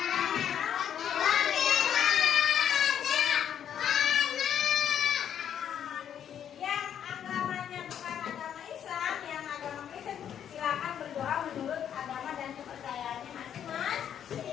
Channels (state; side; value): quieter; right; 9.3 dB